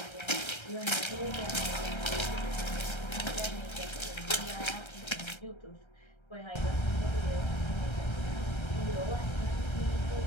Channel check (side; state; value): right; late; 1.3 ms